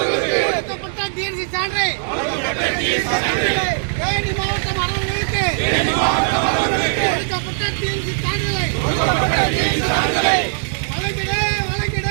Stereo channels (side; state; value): left; silent; digital silence